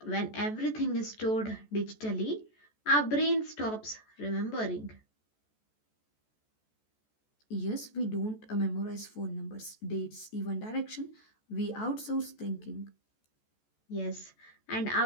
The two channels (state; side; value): late; right; 14 ms